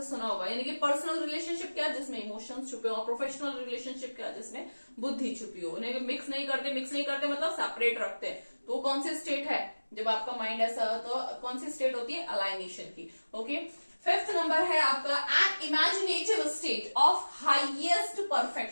सुना होगा। यानी कि पर्सनल रिलेशनशिप क्या, जिसमें इमोशंस छुपे हो, और प्रोफेशनल रिलेशनशिप क्या, जिसमें बुद्धि छुपी हो। उन्हें मिक्स नहीं करते, मिक्स नहीं करते मतलब सेपरेट रखते हैं। तो कौन सी स्टेट है, जब आपका माइंड ऐसा हो तो कौन सी स्टेट होती है, अलाइनेशन की, ओके। फिफ्थ नंबर है आपका an imaginative state of highest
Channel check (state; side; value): inverted; both; correlation -1.00